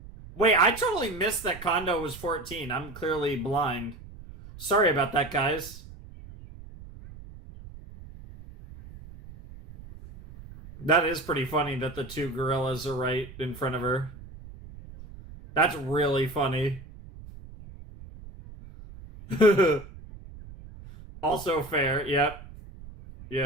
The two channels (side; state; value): right; noise; rumble, 17 dB below the sound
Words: I totally missed that Kondo was 14. I'm clearly blind. Sorry about that, guys. That is pretty funny that the two gorillas are right in front of her. That's really funny. Also fair. Yep.